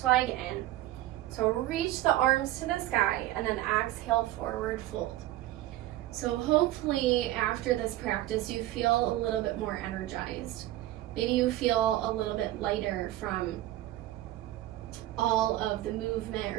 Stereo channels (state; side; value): quieter; left; 15.2 dB